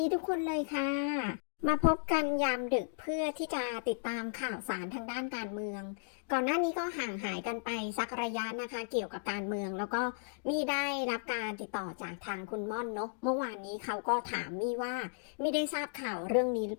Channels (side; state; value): right; silent; digital silence